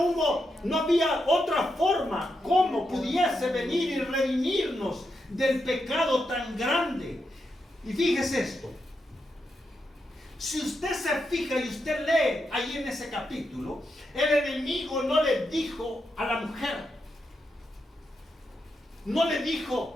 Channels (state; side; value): normal; both; correlation 0.84